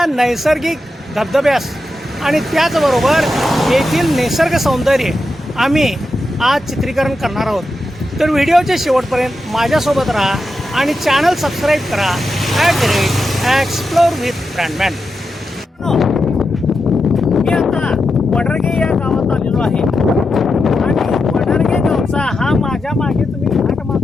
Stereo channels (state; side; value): normal; both; correlation 0.88